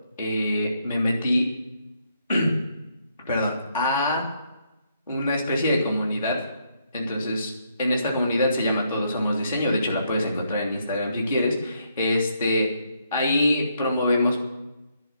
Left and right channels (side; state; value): both; inverted; correlation -0.75